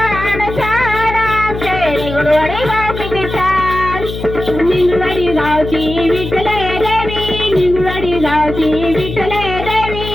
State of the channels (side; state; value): left; noise; hum, 8 dB below the sound